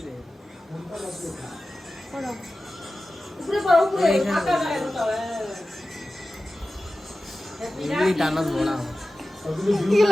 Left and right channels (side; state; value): both; normal; correlation 0.95